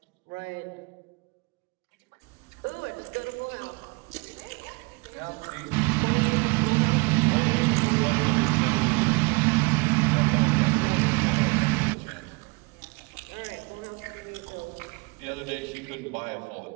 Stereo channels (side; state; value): left; quieter; 28.4 dB